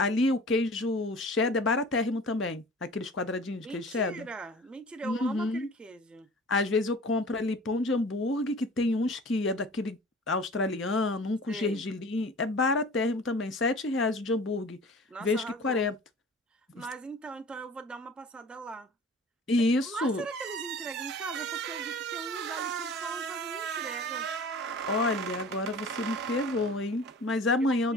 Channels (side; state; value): both; normal; correlation 0.43